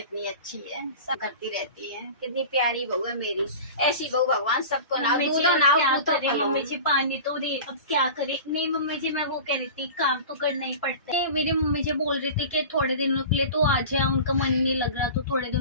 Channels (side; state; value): both; inverted; correlation -0.35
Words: अच्छी है, सब करती रहती है। कितनी प्यारी बहू है मेरी। ऐसी बहू भगवान सबको ना मम्मी जी, दूधो अब ना क्या पूतो करे फलो। मम्मी जी, पानी तो दे, अब क्या करे। नहीं मम्मी जी, मैं वो कह रही थी काम तो करना ही पड़ता है। मेरी मम्मी जी बोल रही थी कि थोड़े दिनों के लिए तो आ जाए, उनका मन नहीं लग रहा तो थोड़े